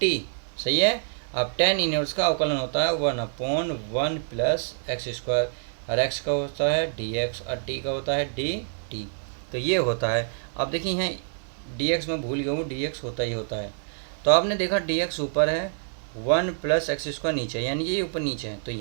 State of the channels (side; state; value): left; silent; digital silence